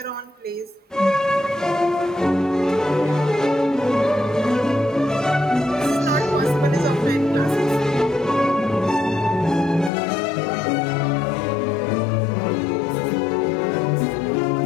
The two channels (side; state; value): right; drops out; at 9.9 s